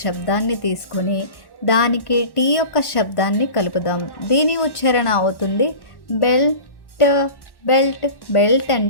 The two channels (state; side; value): late; right; 1.1 ms